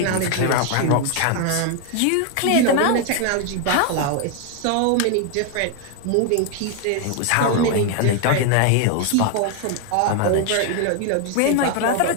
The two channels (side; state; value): both; different; correlation 0.01